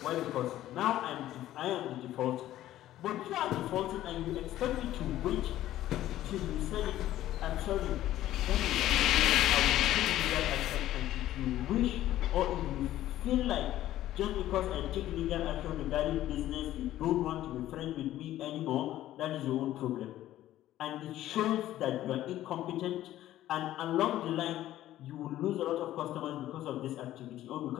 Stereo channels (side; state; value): right; quieter; 13.7 dB